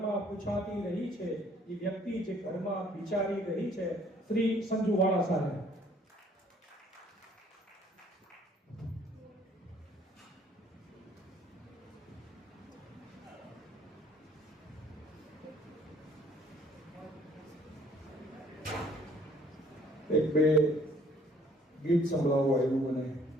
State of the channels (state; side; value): normal; both; correlation 0.59